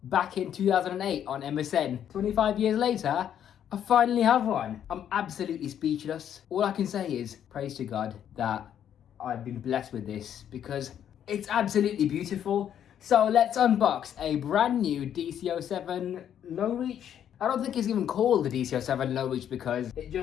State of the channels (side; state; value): right; quieter; 9.7 dB